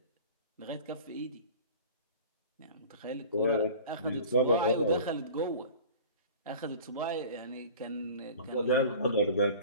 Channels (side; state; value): both; inverted; correlation -0.41